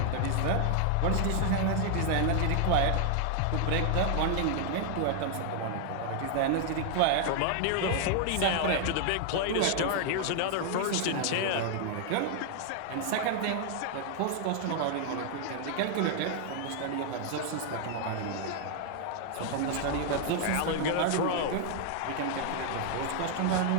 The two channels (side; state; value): both; different; correlation 0.00